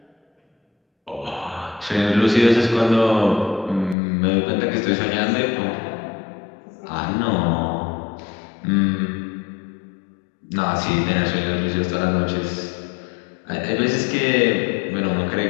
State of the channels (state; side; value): drops out; right; at 4.0 s